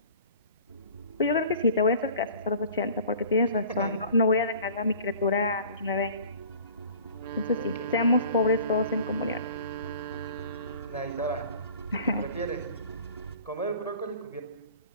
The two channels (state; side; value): inverted; both; correlation -0.46